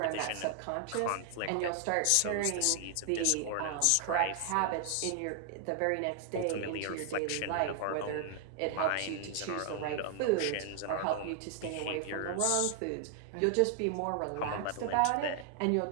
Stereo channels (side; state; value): both; different; correlation 0.00